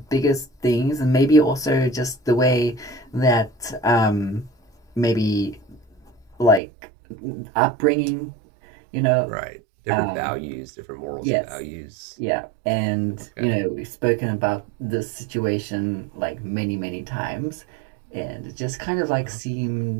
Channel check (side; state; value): left; drops out; at 6.6 s